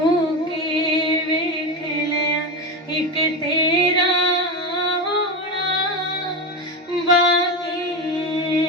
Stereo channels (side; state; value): both; normal; correlation 0.18